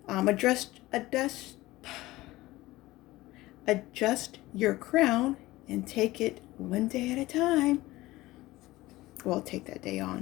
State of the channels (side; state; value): right; quieter; 18.4 dB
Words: Adjust your crown and take it one day at a time. Well, take that day